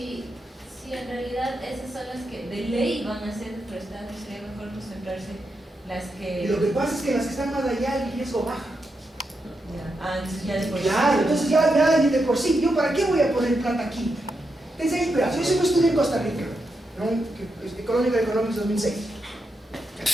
en realidad esas son las que de ley van a ser deforestadas, sería mejor concentrarse las que... Y lo que pasa es que las que están más allá el riesgo baja. Entonces ya después... Claro, entonces ya de por sí, ¿yo para qué voy a poner plata aquí? Pensé, espera, yo hice un estudio en Costa Rica, ¿no? Economic Economics 2006.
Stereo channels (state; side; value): normal; both; correlation 0.85